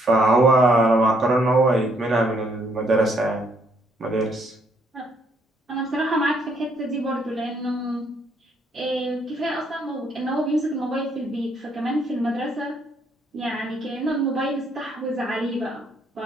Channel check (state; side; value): normal; both; correlation 0.70